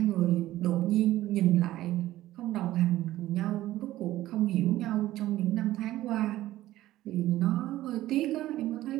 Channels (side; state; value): left; quieter; 15.1 dB